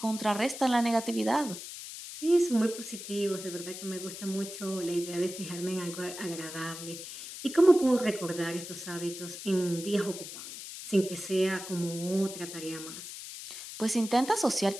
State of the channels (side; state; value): left; noise; hiss, 10 dB below the sound